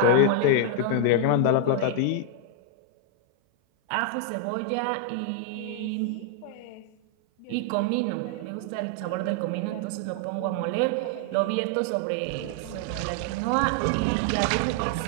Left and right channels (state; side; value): different; both; correlation 0.00